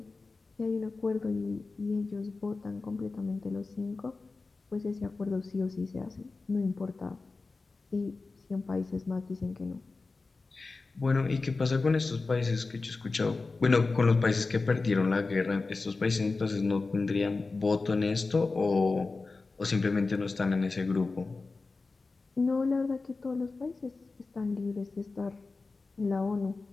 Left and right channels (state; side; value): quieter; right; 3.8 dB